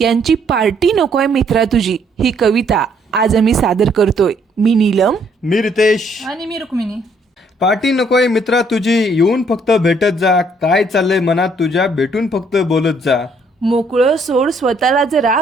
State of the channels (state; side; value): normal; both; correlation 0.66